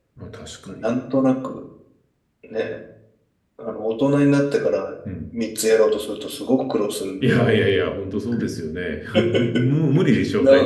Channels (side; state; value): both; identical; correlation 1.00